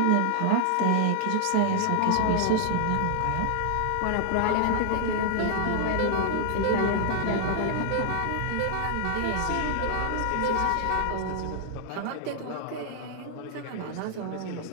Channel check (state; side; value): different; both; correlation 0.00